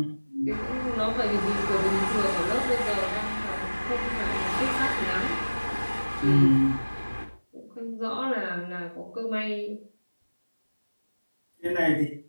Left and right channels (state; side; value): inverted; both; correlation -1.00